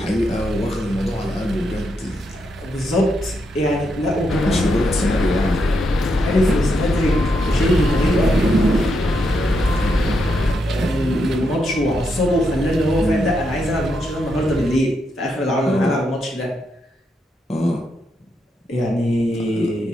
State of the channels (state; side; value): normal; both; correlation 0.81